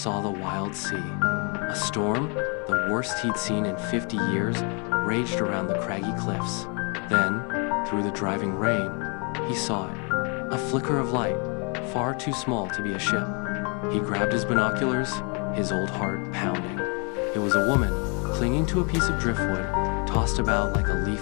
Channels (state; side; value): quieter; right; 35.4 dB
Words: the wild sea. A storm, the worst he'd seen in 50 years, raged around the craggy cliffs. Then, through the driving rain, he saw it. A flicker of light, far too small to be a ship. He grabbed his binoculars, his old heart pounding. It was a woman, clinging to a piece of driftwood, tossed about like a